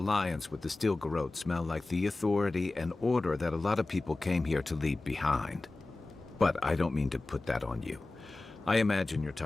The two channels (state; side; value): quieter; right; 3.1 dB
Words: with the Stilgarrote smell like the authority and order that a lot of people came here to leave behind. But I don't mean to put that on you. I imagine you're